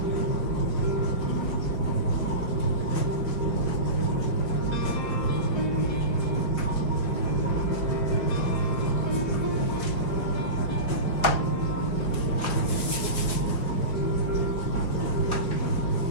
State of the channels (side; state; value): right; late; 5.0 ms